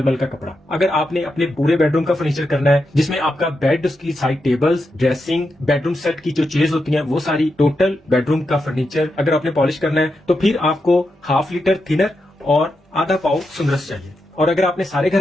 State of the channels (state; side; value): normal; both; correlation 0.86